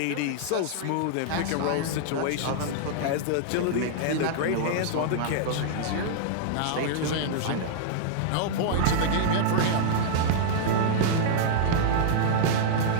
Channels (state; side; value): different; both; correlation -0.01